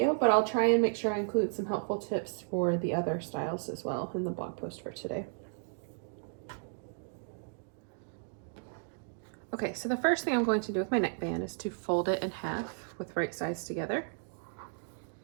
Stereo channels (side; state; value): left; silent; digital silence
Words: but I'll try and make sure I include some helpful tips for the other styles as well in the blog post for today. Okay, so the first thing I'm going to do with my neckband is to fold it in half with right sides together.